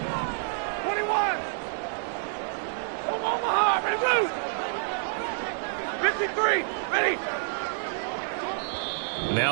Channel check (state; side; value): silent; left; digital silence